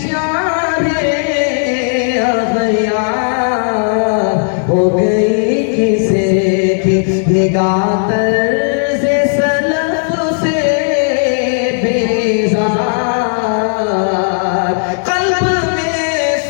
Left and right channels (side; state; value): right; silent; digital silence